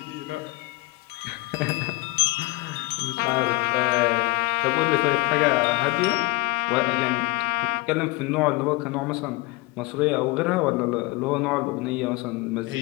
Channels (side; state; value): right; quieter; 23.7 dB